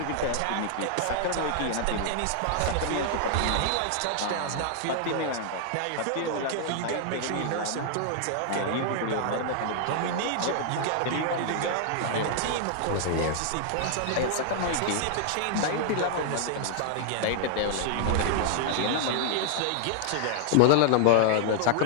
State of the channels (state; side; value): different; both; correlation -0.01